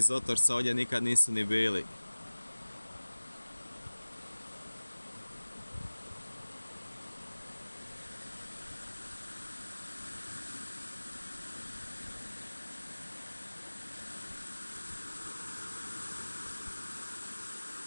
Otorca ovdje nikad nisu ni bili.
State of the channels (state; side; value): inverted; both; correlation -1.00